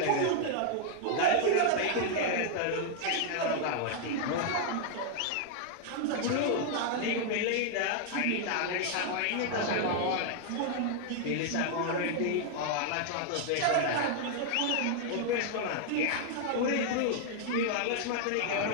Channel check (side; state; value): both; different; correlation 0.00